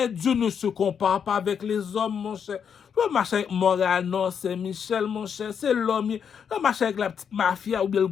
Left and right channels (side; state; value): right; quieter; 7.4 dB